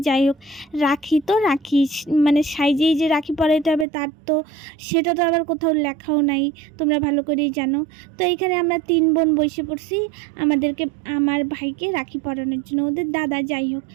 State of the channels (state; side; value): drops out; left; at 3.9 s